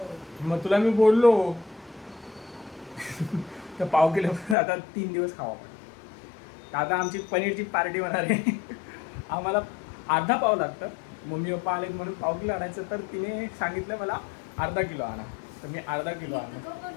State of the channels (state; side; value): drops out; right; at 4.5 s